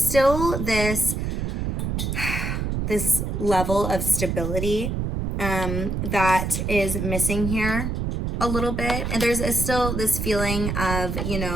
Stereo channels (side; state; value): right; noise; rumble, 2 dB below the sound